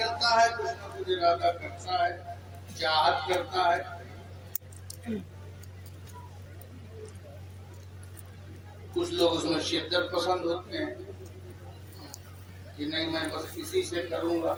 है, कुछ न कुछ इरादा करता है, चाहत करता है। कुछ लोग उसमें शिद्दत पसंद होते हैं कि नहीं, मैं बस इसी से करूंगा,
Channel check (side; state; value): both; identical; correlation 1.00